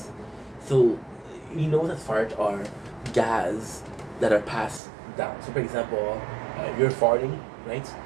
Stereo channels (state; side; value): drops out; left; at 4.8 s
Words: So you know that farts are gas that are passed down. So for example, you're farting, right?